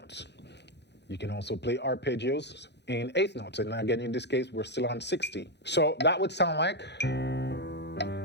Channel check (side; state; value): right; late; 0.50 ms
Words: You can also play arpeggios in eighth notes. And again, in this case, we're still on 60. So that would sound like.